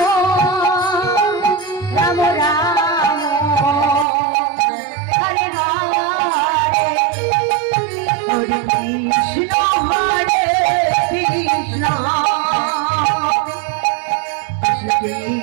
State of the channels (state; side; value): drops out; left; at 4.0 s